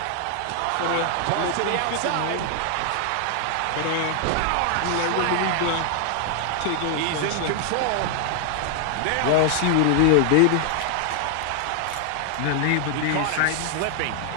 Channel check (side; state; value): both; different; correlation 0.00